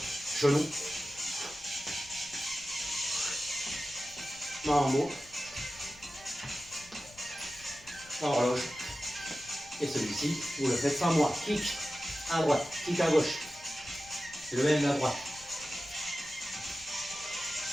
Genou. Mambo. Horloge. Et celui-ci, vous le faites sans moi. Kick à droite, kick à gauche. Le même à droite.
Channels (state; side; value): noise; left; rumble, 23 dB below the sound